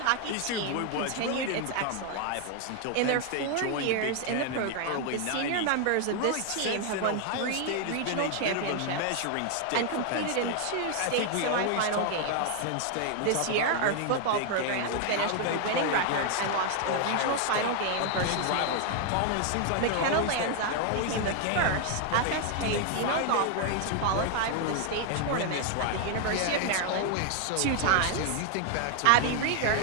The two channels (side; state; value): both; different; correlation 0.00